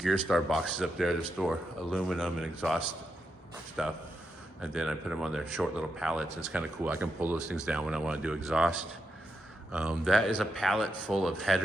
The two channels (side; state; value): both; normal; correlation 0.84